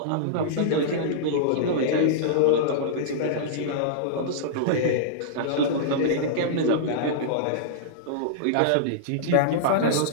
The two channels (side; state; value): both; different; correlation -0.03